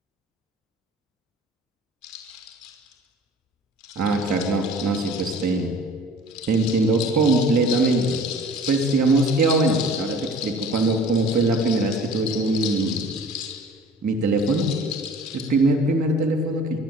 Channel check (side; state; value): both; normal; correlation 0.47